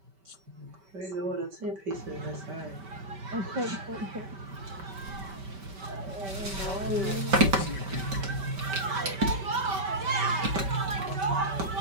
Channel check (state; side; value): late; left; 5.2 ms